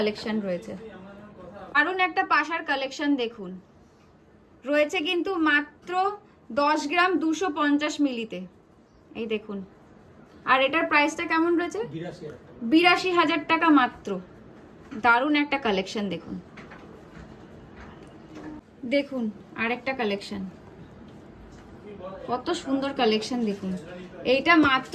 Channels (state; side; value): identical; both; correlation 1.00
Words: রয়েছে, দারুণ একটা পাশার কালেকশন দেখুন, রয়েছে কিন্তু মাত্র 10 গ্রাম 250 মিলিতে। এই দেখুন, আর এটার প্রাইসটা কেমন রয়েছে, 82,000 টাকা মাত্র। দারুণ একটা কালেকশন দেখুন। দেখুন আরেকটা কালেকশন, কত সুন্দর কালেকশন দেখুন, এইটা মাত্র